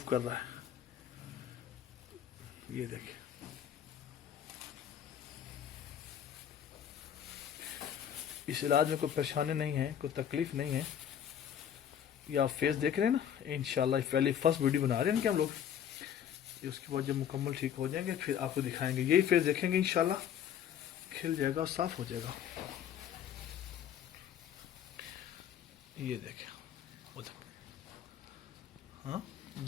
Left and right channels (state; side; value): quieter; right; 9.2 dB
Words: کر رہا ہے. یہ دیکھیں اس علاج میں کوئی پریشانی نہیں ہے, کوئی تکلیف نہیں ہے. یہ آپ فیس دیکھ رہے ہیں نا. انشاءاللہ پہلی فرسٹ ویڈیو بنا رہے ہیں کہ ہم لوگ. اس کے بعد جب مکمل ٹھیک ہو جائیں گے پھر آپ کو دکھائیں گے. یہی فیس دیکھیں گے انشاءاللہ کھل جائے گا اور صاف ہو جائے گا. یہ دیکھیں ہاں